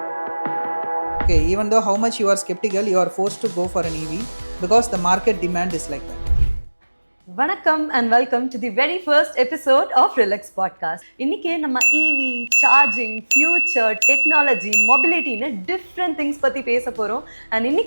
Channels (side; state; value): both; inverted; correlation -1.00